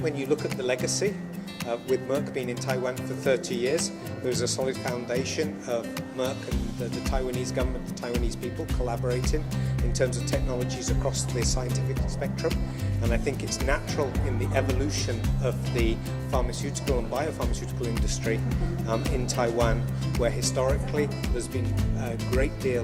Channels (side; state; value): both; identical; correlation 1.00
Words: you look at the legacy, with Merck being in Taiwan for 30 years, there's a solid foundation of Merck and the Taiwanese government, the Taiwanese people collaborating in terms of technologies across the scientific spectrum. And I think it's natural in the evolution of the pharmaceutical and biopharmaceutical industry in Taiwan, where historically there's been a great deal